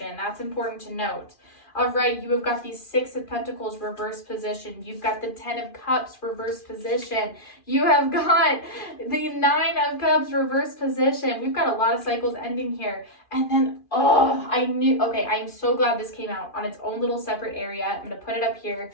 That's important to note. All right, you have got the 6 of Pentacles, reverse position. You've got the 10 of Cups, reverse position. You have got the 9 of Cups, reverse position. We've got a lot of cycles ending here. And then, okay, I'm so glad this came out on its own little separate area. I'm going to put it up here.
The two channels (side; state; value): right; late; 2.4 ms